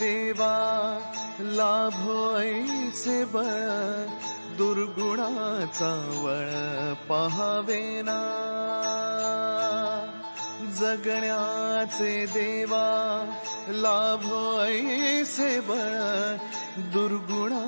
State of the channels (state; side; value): inverted; both; correlation -1.00